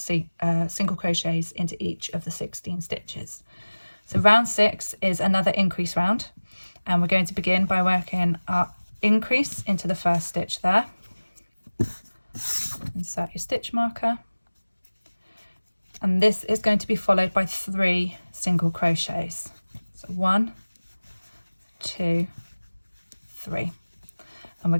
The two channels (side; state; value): both; inverted; correlation -1.00